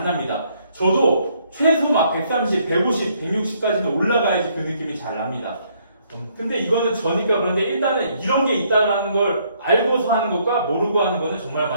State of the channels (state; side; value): inverted; both; correlation -0.68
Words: 납니다. 저도 최소 막 130, 150, 160까지는 올라가야지 그 느낌이 잘 납니다. 근데 이거는 저니까 그런데, 일단은 이런 게 있다는 걸 알고서 하는 것과 모르고 하는 것은 정말